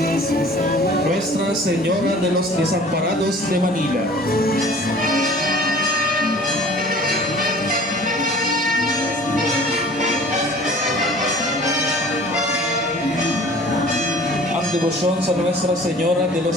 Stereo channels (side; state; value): both; normal; correlation 0.47